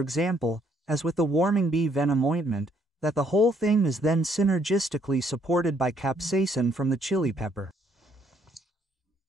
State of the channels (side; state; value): both; normal; correlation 0.68